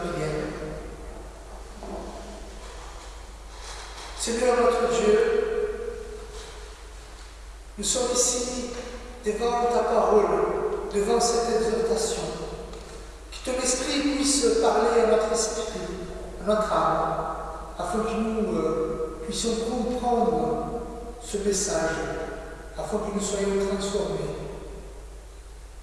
Seigneur notre Dieu, nous sommes ici devant ta parole, devant cette exhortation. Que ton esprit puisse parler à notre esprit, à notre âme, afin que nous puissions comprendre ce message, afin que nous soyons transformés.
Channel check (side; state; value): both; identical; correlation 1.00